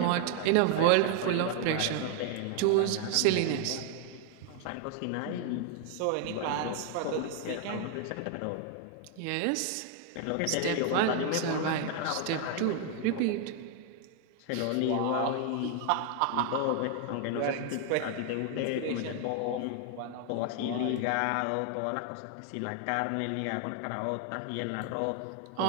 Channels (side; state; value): both; different; correlation 0.00